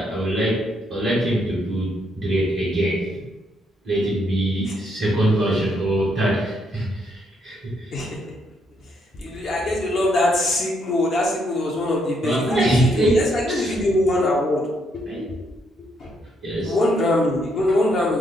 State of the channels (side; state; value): both; normal; correlation 0.74